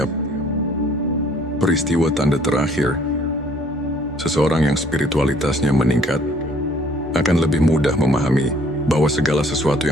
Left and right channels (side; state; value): both; normal; correlation 0.59